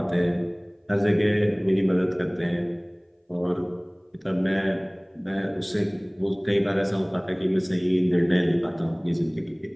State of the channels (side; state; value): both; identical; correlation 1.00